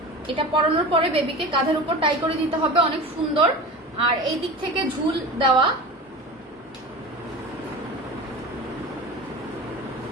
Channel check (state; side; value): normal; both; correlation 0.32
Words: এটা পরানোর পরে বেবিকে কাঁধের উপর টাই করে দিতে হবে, অনেক সুন্দর। আর এই দিক থেকে ঝুল দেওয়া,